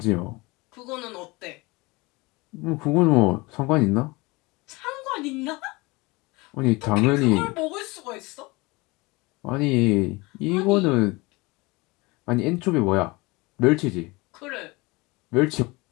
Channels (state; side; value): quieter; right; 24.1 dB